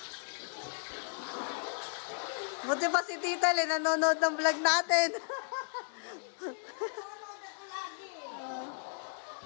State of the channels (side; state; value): right; silent; 55 dB below the other